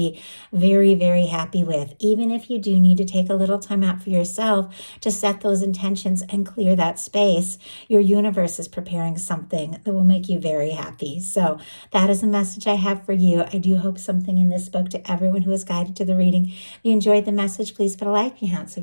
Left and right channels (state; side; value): inverted; both; correlation -1.00